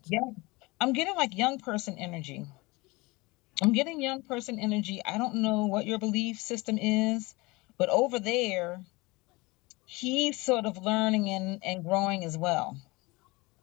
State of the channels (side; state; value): right; quieter; 23.7 dB